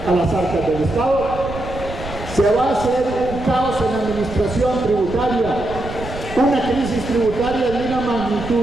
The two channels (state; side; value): noise; right; rumble, 11 dB below the sound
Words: a las arcas del Estado, se va a hacer un caos en la administración tributaria, una crisis tributaria de una